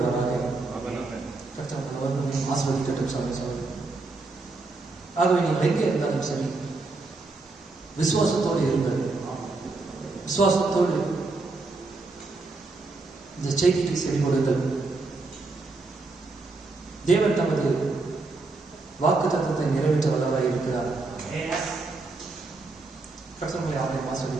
கர்த்தர் ஆசீர்வதிக்கட்டும் சகோதரர்களே. ஆகவே நீங்கள் எங்கே இருந்தாலும் சரி விசுவாசத்தோடு இருங்கள். விசுவாசத்தோடு இந்த செய்திக்கு செவி கொடுங்கள். தேவன் தமது வாக்கு தத்தத்தை நிறைவேற்ற வல்லவராய் இருக்கிறார். கர்த்தர்களை அவரை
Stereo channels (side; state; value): left; quieter; 3.5 dB